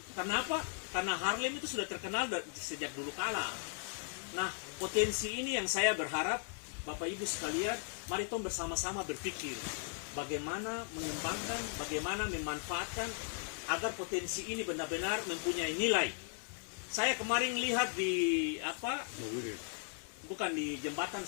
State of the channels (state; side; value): silent; right; 53 dB below the other